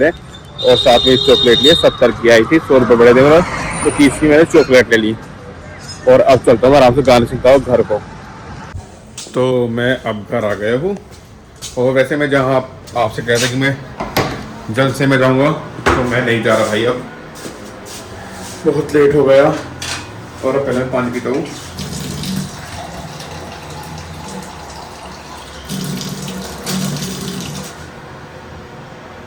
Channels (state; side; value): identical; both; correlation 1.00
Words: है, और साथ में चॉकलेट लिए 70 की आई थी, 100 रुपये बड़े थे, तो 30 की मैंने चॉकलेट ले ली। और अब चलता हूँ आराम से गाने सुनता हूँ घर को। तो मैं अब घर आ गया हूँ, और वैसे मैं जहाँ आपसे कहता कि मैं जल्द से मैं जाऊँगा, तो मैं नहीं जा रहा भाई, अब बहुत लेट हो गया। और अब पहले मैं पानी पीता हूँ।